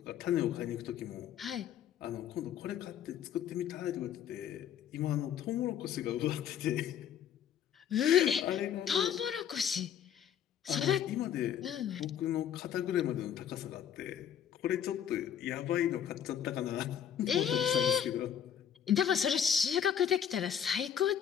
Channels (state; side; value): quieter; right; 9.0 dB